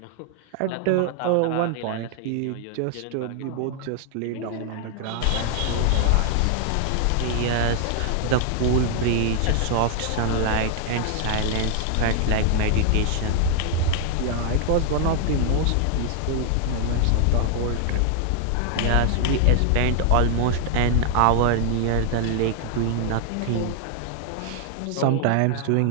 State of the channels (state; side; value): different; both; correlation 0.00